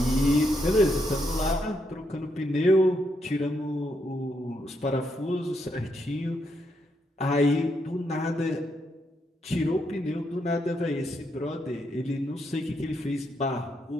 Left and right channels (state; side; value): normal; both; correlation 0.79